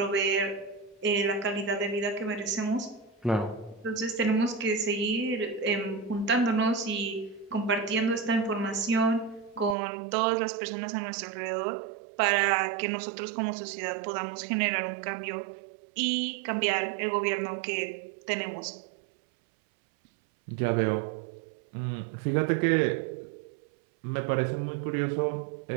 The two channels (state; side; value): drops out; left; at 9.8 s